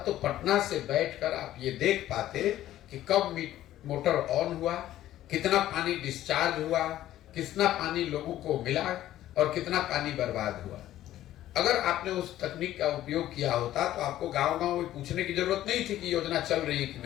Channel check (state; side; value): quieter; right; 13.5 dB